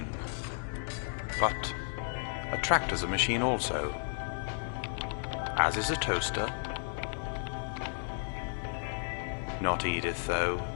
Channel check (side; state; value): right; silent; 56 dB below the other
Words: But a tractor's a machine also. As is a toaster. Not Edith, though.